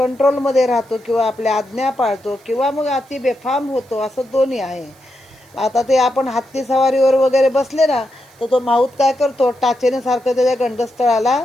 राहतो किंवा आपल्या आज्ञा पाळतो किंवा मग अति बेफाम होतो, असं दोन्ही आहे. आता ते आपण हत्ती सवारीवर वगैरे बसले ना, तर तो माऊत काय करतो, टाचेने सारखं त्याच्या गंडस्थळाला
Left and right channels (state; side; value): noise; right; hiss, 30 dB below the sound